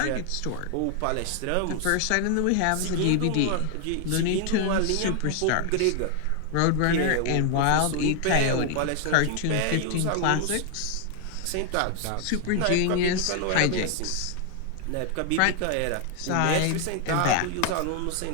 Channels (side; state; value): both; different; correlation 0.00